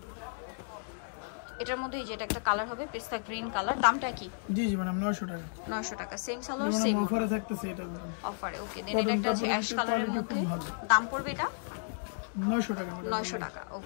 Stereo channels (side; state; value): right; silent; digital silence